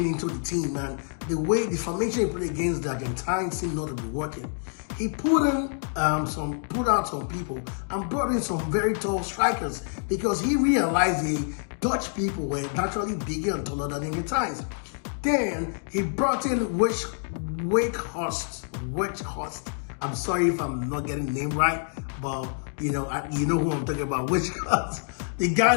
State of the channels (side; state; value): right; silent; 60 dB below the other